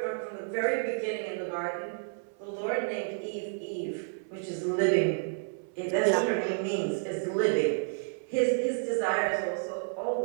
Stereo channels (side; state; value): left; silent; 57 dB below the other